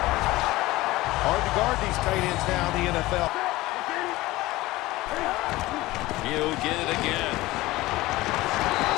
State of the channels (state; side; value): quieter; right; 18.7 dB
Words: Hard to guard these tight ends now in the NFL. He'll get it again.